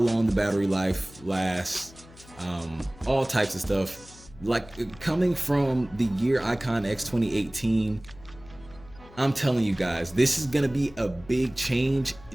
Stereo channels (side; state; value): left; noise; hum, 22 dB below the sound